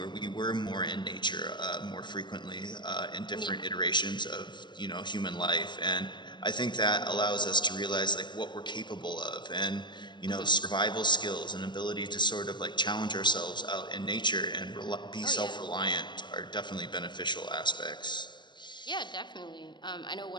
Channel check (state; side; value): late; right; 0.22 ms